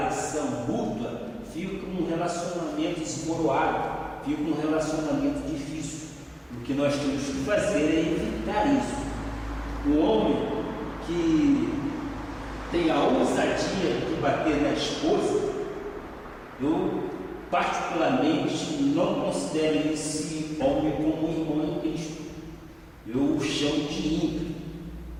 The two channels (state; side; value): identical; both; correlation 1.00